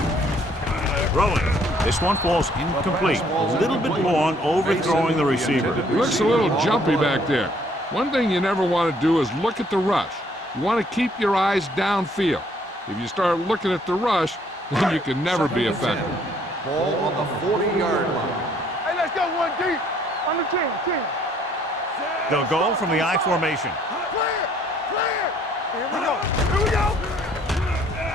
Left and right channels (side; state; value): both; normal; correlation 0.63